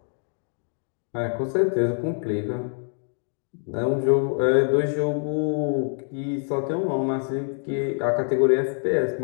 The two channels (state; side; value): silent; right; 56 dB below the other